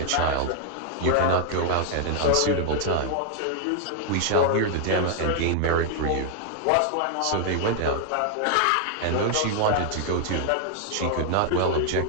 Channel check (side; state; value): both; different; correlation 0.00